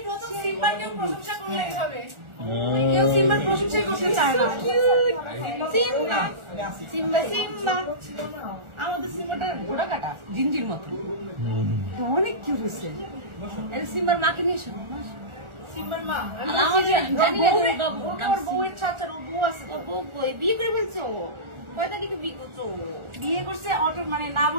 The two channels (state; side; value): late; left; 1.4 ms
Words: সিম্বাকেও প্রশংসা করলেই হবে, কেউ সিম্বার প্রশংসাই করতে চায় না। সিম্বা সিম্বা সিম্বা আমাদের সিম্বাটা ঘোড়া কাটা জিঞ্জির মতো, অনেক কিউট হয়েছে। সিম্বার মাকে নিয়ে এসো। সিম্বার মা জানি না ওর বউয়ের ছাড়া ওর বউ আছে, ওর বউ কই বিয়ে করে ফেলছো? কয় তারিখে বিয়ে করছো? বিয়ে করছে অটো মানে না